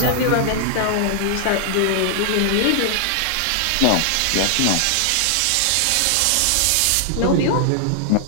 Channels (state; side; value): different; both; correlation 0.00